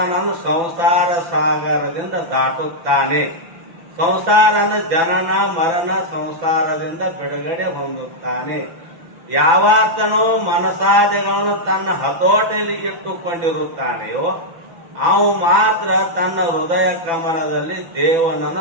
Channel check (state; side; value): late; left; 6.0 ms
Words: ಸಂಸಾರ ಸಾಗರದಿಂದ ದಾಟುತ್ತಾನೆ. ಸಂಸಾರನ ಜನನ ಮರಣ ಸಂಸಾರದಿಂದ ಬಿಡುಗಡೆ ಹೊಂದುತ್ತಾನೆ. ಯಾವಾತನು ಮನಸಾದಿಗಳನ್ನು ತನ್ನ ಹತೋಟಿಯಲ್ಲಿ ಇಟ್ಟುಕೊಂಡಿರುತ್ತಾನೆಯೋ ಅವು ಮಾತ್ರ ತನ್ನ ಹೃದಯ ಕಮಲದಲ್ಲಿ